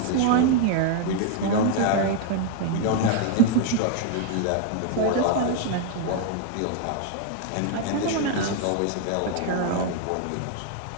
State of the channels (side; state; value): both; different; correlation 0.00